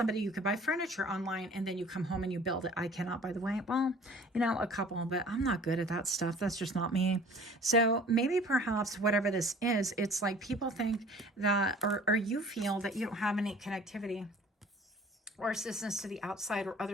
you could buy furniture online and then you come home and you build it. I cannot, by the way. Well, you know, a couple, but I'm not good at that stuff. That's just not me. So maybe perhaps whatever this is, it's like people think that, or you feel that you don't have any connectivity or assistance to the outside or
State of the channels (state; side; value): normal; both; correlation 0.49